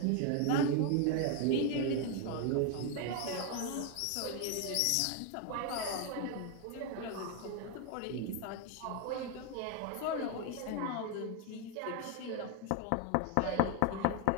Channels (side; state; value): both; different; correlation 0.01